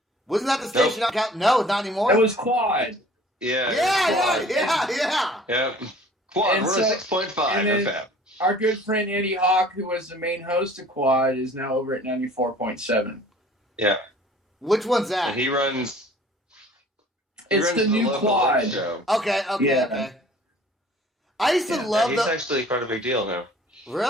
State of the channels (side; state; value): both; normal; correlation 0.50